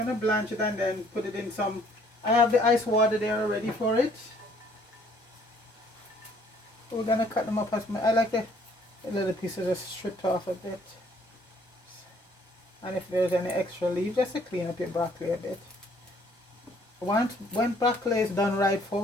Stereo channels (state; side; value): normal; both; correlation 0.61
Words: blanch it and then put it in some, I have the ice water there ready for it. So we're gonna cut them up as I like the little pieces just stripped off a bit. And if there's any extra leaves, just to clean up your broccoli a bit. When broccoli is done right,